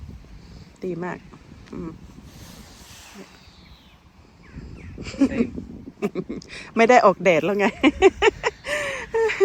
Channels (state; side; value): identical; both; correlation 1.00